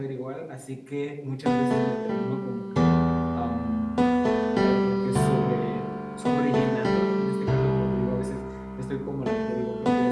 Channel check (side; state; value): both; identical; correlation 1.00